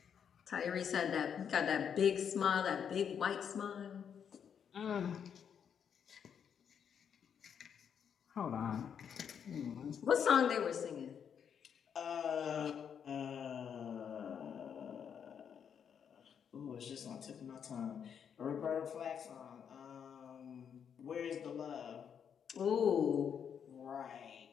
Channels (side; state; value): right; quieter; 7.8 dB